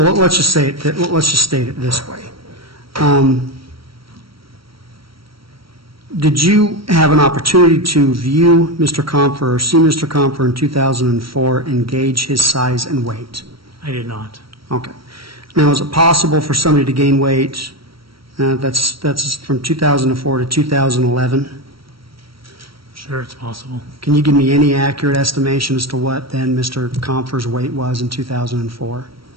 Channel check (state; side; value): late; left; 0.75 ms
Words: let's just state it this way. Did you have an opportunity to view Mr. Compher or see Mr. Compher in 2004 and gauge his size and weight? I did not. Okay. Now, is it possible for somebody to gain weight that's from 2004 to 2011? Sure, it's possible. Can you give me any accurate estimation as to what then Mr. Compher's weight was in 2004?